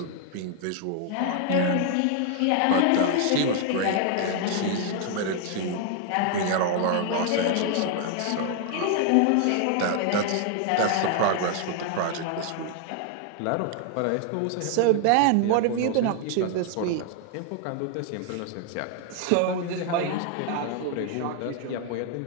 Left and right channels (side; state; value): both; different; correlation 0.00